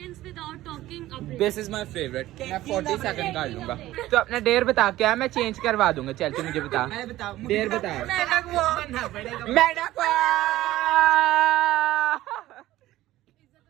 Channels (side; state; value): left; quieter; 15.7 dB